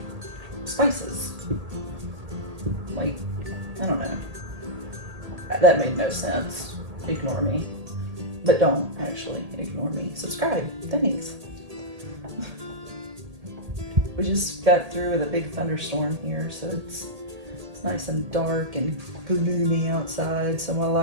spices. Like, I don't know. That made no sense. Ignore me. But don't actually ignore me. Subscribe. Thanks. We just got through with a big thunderstorm here, so it's nice and dark and gloomy outside, so my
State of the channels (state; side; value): late; left; 1.8 ms